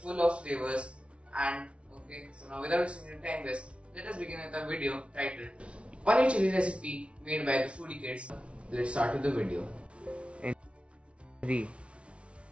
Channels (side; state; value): left; late; 0.060 ms